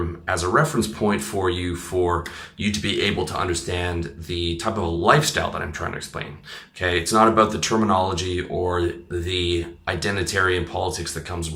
as a reference point for you to be able to understand the type of lifestyle that I'm trying to explain. Okay, it's not about the terminology or the identitarian politics that comes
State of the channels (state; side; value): identical; both; correlation 1.00